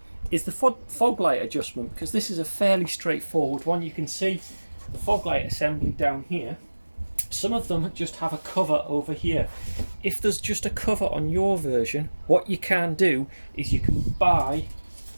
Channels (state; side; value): inverted; both; correlation -1.00